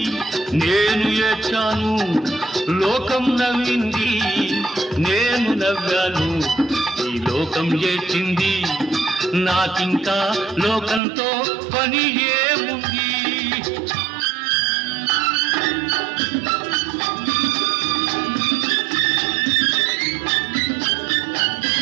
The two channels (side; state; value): left; drops out; at 11.0 s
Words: నేను ఏడ్చాను, లోకం నవ్వింది, నేను నవ్వాను, ఈ లోకం ఏడ్చింది, నాకింకా లోకంతో పని ఏముంది?